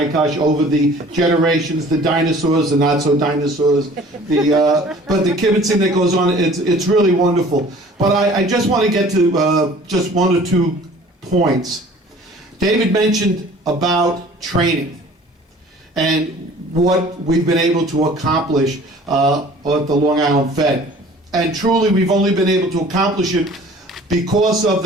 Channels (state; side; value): normal; both; correlation 0.49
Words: over the generations, the dinosaurs, the not so dinosaurs, but the kibitzing that goes on. It's really wonderful. But I just want to get to just one or two points. David mentioned about training and what we've been able to accomplish at the Long Island Fed. And truly, we've only been able to accomplish it because of